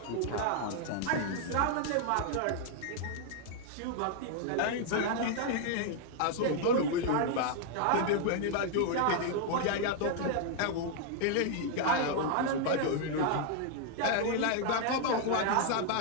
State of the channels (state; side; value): different; both; correlation 0.00